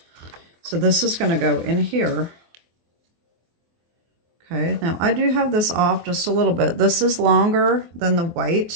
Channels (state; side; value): late; left; 24 ms